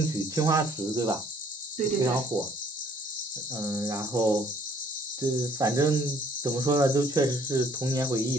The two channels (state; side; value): normal; both; correlation 0.60